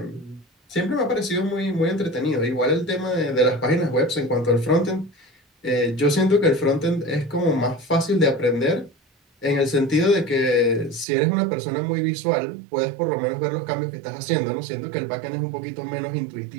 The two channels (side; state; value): left; drops out; at 11.1 s